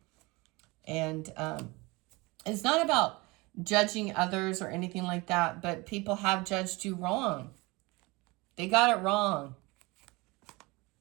And it's not about judging others or anything like that, but people have judged you wrong. They got it wrong.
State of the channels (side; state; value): left; quieter; 24.2 dB